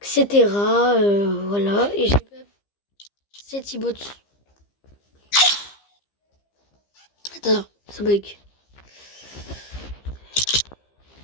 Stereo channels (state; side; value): late; right; 15 ms